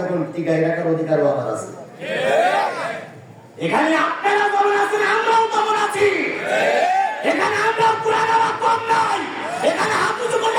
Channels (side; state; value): both; identical; correlation 1.00